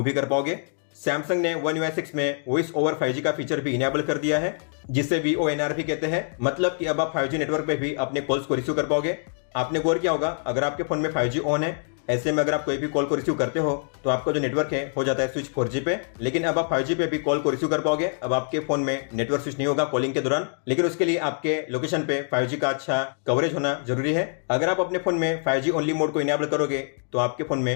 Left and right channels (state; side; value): silent; right; 62 dB below the other